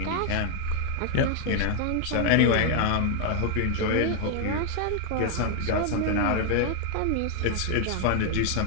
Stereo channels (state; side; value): different; both; correlation 0.00